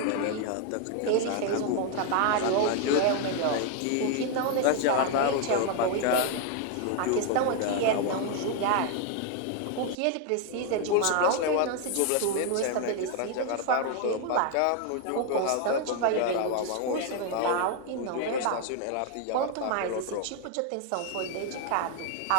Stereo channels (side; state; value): both; different; correlation 0.00